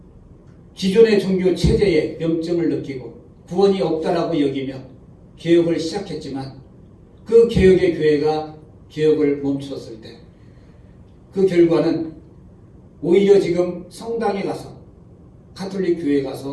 기존의 종교 체제에 염증을 느끼고 구원이 없다라고 여기며 개혁을 시작했지만 그 개혁의 교회가 개혁을 멈췄을 때 그 결과는 오히려 지금 성당에 가서 가톨릭 교회에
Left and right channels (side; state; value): both; identical; correlation 1.00